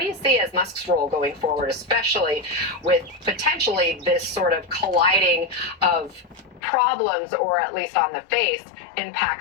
you see as Musk's role going forward, especially with potentially this sort of colliding of problems, or at least on the face,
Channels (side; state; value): right; drops out; at 6.6 s